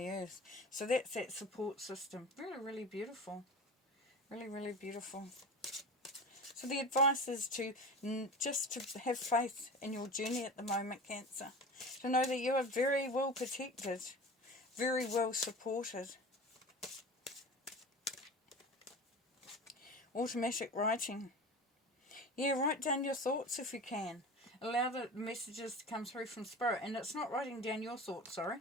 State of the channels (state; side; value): normal; both; correlation 0.33